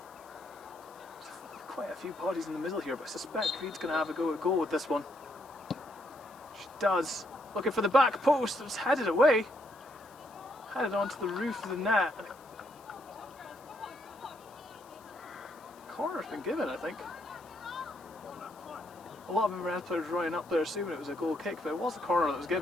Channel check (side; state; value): left; noise; hiss, 26 dB below the sound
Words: There's quite a few bodies in the middle here, but I suspect Reid's going to have a go at goal with this one. She does. Looking for the back post. It was headed away. Headed onto the roof of the net. Corner's been given, I think. A lot of Inverness players running up there assuming it was a goal kick, but it was a corner that was